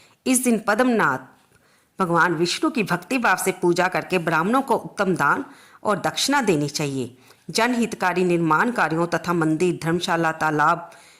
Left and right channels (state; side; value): identical; both; correlation 1.00